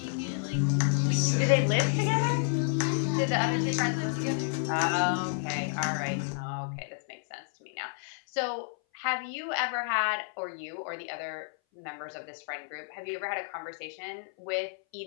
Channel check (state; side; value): silent; right; 58 dB below the other